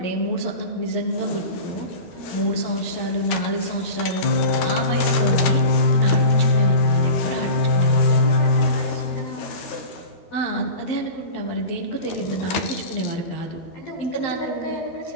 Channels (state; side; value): late; right; 12 ms